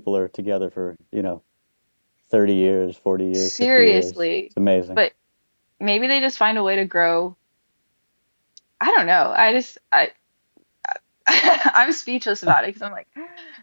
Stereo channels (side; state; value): both; inverted; correlation -1.00